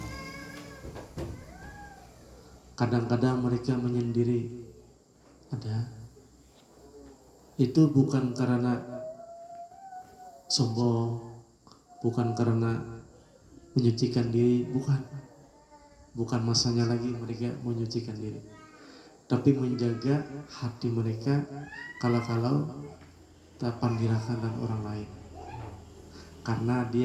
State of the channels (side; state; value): both; identical; correlation 1.00